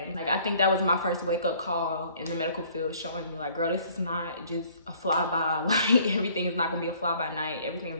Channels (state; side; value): inverted; both; correlation -0.57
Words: like I think that was my first wake up call in the medical field, showing me like, girl, this is not just a flyby. Like everything is not gonna be a fly by night. Everything is